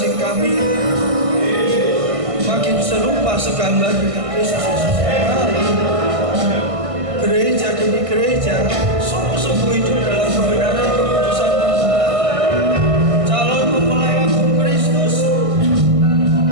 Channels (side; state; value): left; late; 1.6 ms